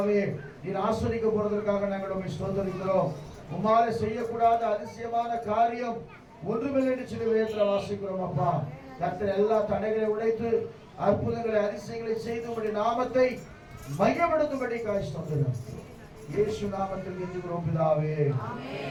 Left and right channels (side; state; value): both; identical; correlation 1.00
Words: நீர் ஆசீர்வதிக்க போறதற்காக நாங்கள் உம்மை ஸ்தோத்திரிக்கிறோம். உம்மாலே செய்யக்கூடாத அதிசயமான காரியம் ஒன்றுமில்லை என்று சொல்லி வேதத்தில் வாசிக்கிறோம். அப்பா கர்த்தர் எல்லா தடைகளை உடைத்து அற்புதங்களை அதிசயங்களை செய்து உம்முடைய நாமத்தை மையப்படுத்தும்படிக்காக ஸ்தோத்திரம். இயேசு நாமத்தில் கெஞ்சுகிறோம் பிதாவே.